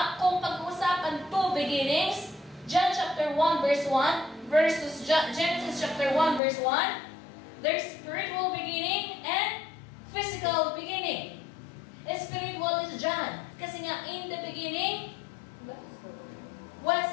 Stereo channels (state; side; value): drops out; right; at 6.4 s